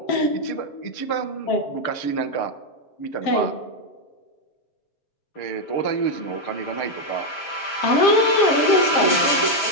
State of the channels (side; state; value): right; late; 7.2 ms